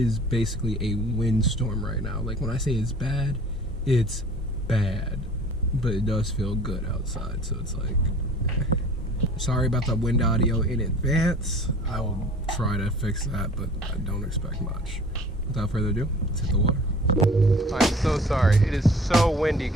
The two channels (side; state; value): both; normal; correlation 0.47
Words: basically a windstorm right now. Like, when I say it's bad, but it does feel good outside, so it's like, sorry about the wind audio in advance. I will try to fix that, but I don't expect much. Without further ado, let's hit the water. I'm so sorry. It is so windy,